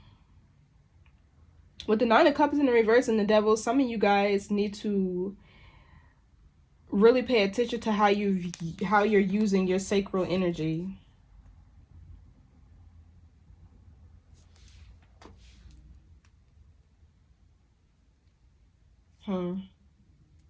With the Nine of Cups in the reverse and the Devil, some of you guys need to really pay attention to how you're using your sacral energy.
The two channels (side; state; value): both; identical; correlation 1.00